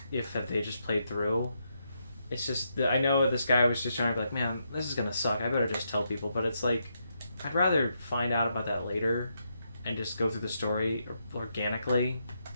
if they just played through. It's just I know this guy was just trying to be man, this is gonna suck. I better just tell people, but it's I'd rather find out about that later. And just go through the story organically.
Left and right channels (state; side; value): inverted; both; correlation -0.80